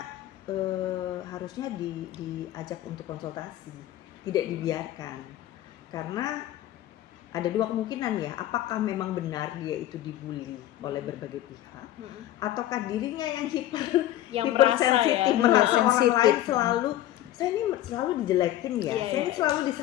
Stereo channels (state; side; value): quieter; right; 13.7 dB